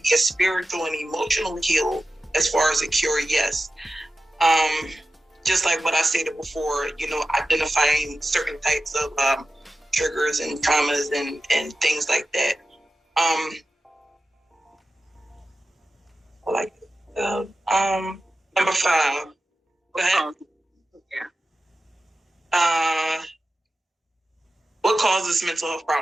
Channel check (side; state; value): both; normal; correlation 0.93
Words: a spiritual and emotional heal as far as a cure, yes. Just like what I stated before, identifying certain types of triggers and traumas and things like that. Number 5. Go ahead. What causes mental health